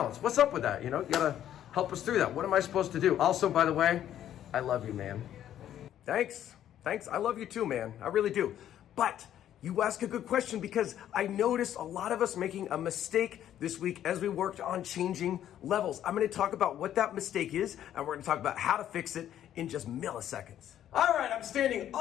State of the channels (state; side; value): quieter; right; 11.1 dB